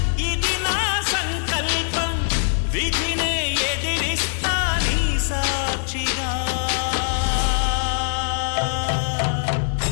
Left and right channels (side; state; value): right; silent; digital silence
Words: ఇది నా సంకల్పం, విధినే ఎదిరిస్తా నీ సాక్షిగా.